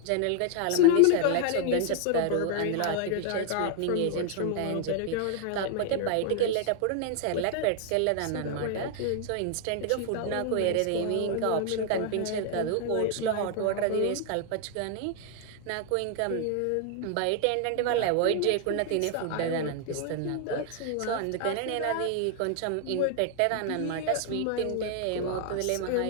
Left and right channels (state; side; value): different; both; correlation 0.00